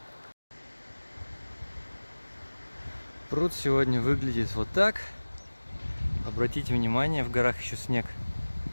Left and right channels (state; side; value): inverted; both; correlation -1.00